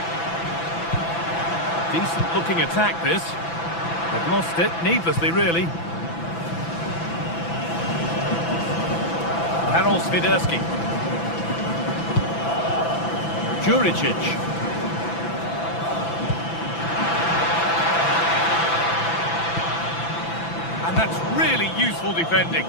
Decent looking attack this. They've lost it, needlessly really. Karol Swiderski. Juricic. And that's really useful defending.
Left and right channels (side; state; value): right; late; 6.0 ms